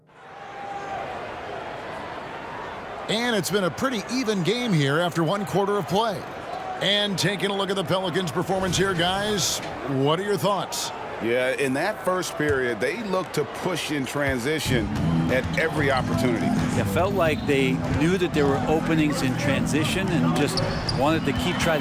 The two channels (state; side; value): identical; both; correlation 1.00